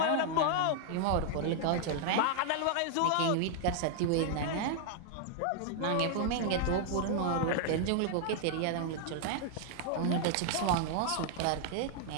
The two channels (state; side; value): different; both; correlation 0.00